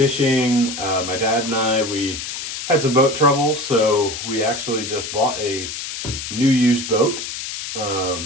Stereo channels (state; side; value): noise; left; hiss, 7 dB below the sound